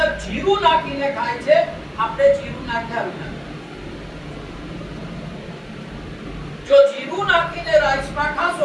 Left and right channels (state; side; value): identical; both; correlation 1.00